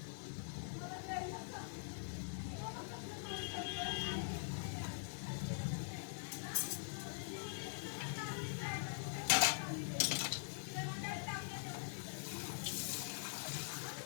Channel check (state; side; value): silent; right; digital silence